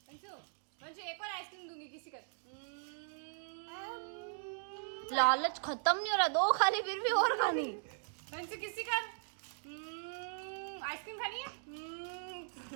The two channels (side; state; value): left; silent; digital silence